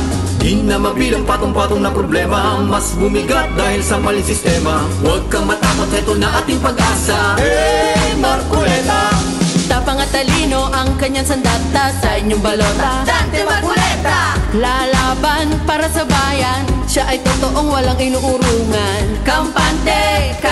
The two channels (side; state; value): both; identical; correlation 1.00